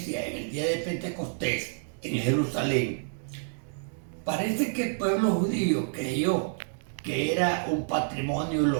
en el día de Pentecostés en Jerusalén, parece que el pueblo judío creyó que era un patrimonio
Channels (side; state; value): left; silent; digital silence